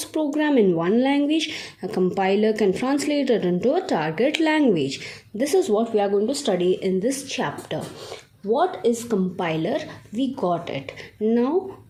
program in one language, a compiler can translate it into a target language. This is what we are going to study in this chapter. What is compiler? We got it. Now,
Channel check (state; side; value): identical; both; correlation 1.00